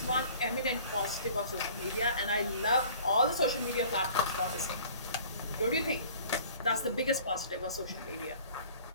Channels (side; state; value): both; inverted; correlation -0.49